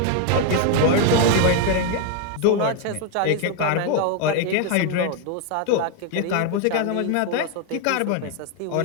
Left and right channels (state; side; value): different; both; correlation 0.01